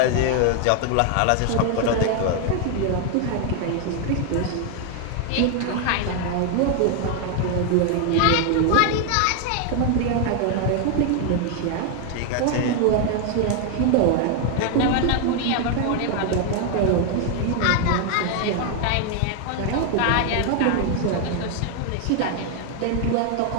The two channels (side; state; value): both; different; correlation 0.00